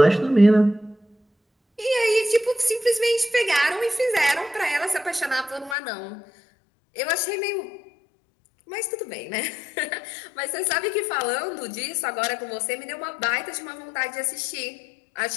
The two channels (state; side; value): drops out; right; at 5.8 s